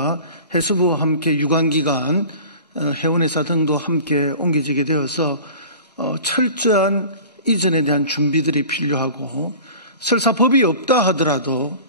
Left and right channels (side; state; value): both; inverted; correlation -0.40